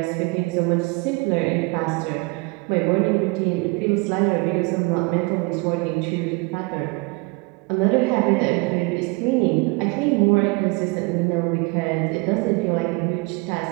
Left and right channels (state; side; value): quieter; left; 28.0 dB